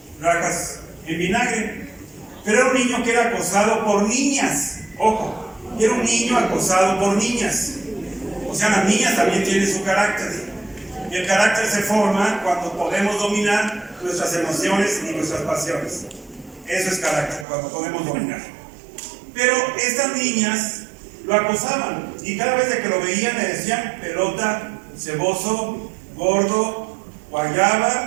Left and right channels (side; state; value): left; drops out; at 17.4 s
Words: rajas en vinagre. Pero era un niño que era acosado por niñas, ojo, y era un niño acosado por niñas. O sea, las niñas también tienen su carácter. Y el carácter se forma cuando podemos dominar nuestras emociones y nuestras pasiones. Eso es carácter, cuando podemos dominar. Pero estas niñas lo acosaban y cada vez que lo veían le decían pelota, ceboso, gordo,